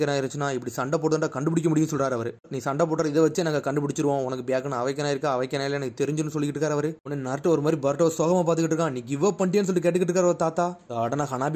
இருந்துச்சுன்னா இப்படி சண்டை போட்டு கண்டுபிடிக்க முடியும்னு சொல்றாரு அவர். நீ சண்டை போடுற இதை வச்சு நாங்க கண்டுபிடிச்சிருவோம், உனக்கு பேக்கன் அவைக்கனா இருக்கா அவக்கனால எனக்கு தெரிஞ்சுன்னு சொல்லிட்டு இருக்காரு அவரு. உடனே நாட்டு ஒரு மாதிரி பார்ட்டோ சோகமா பாத்துக்கிட்டு இருக்கான். நீ கிவ் அப் பண்ணிட்டேன்னு சொல்லி கேட்டுக்கிட்டு இருக்காரு ஒரு தாத்தா. உடனே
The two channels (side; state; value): both; identical; correlation 1.00